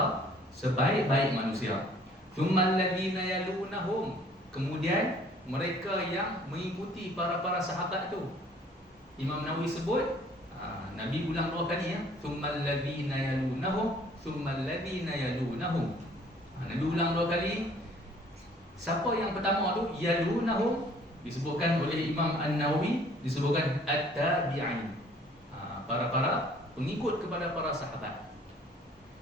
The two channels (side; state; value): both; normal; correlation 0.56